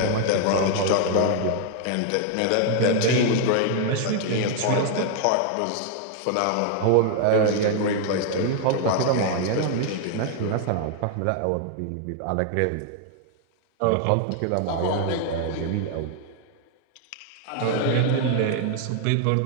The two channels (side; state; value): both; different; correlation 0.00